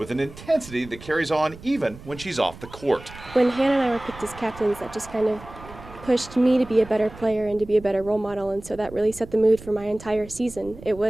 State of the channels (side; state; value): right; noise; rumble, 17 dB below the sound